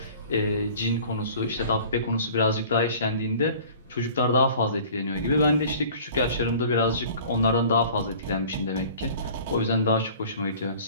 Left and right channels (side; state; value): both; inverted; correlation -0.46